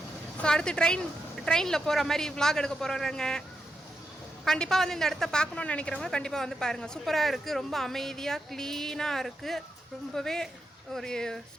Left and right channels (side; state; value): both; normal; correlation 0.85